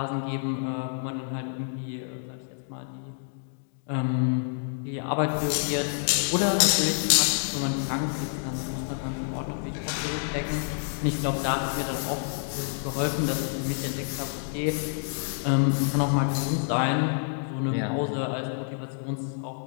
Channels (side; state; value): right; silent; digital silence